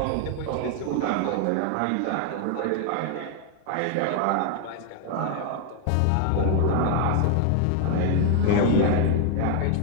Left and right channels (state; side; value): different; both; correlation 0.00